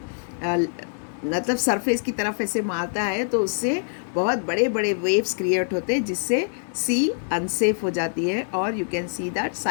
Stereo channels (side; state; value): right; silent; digital silence